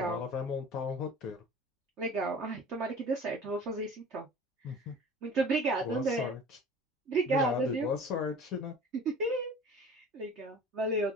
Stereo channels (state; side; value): normal; both; correlation 0.42